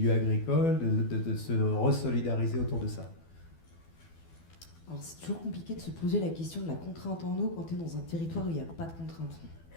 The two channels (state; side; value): late; right; 12 ms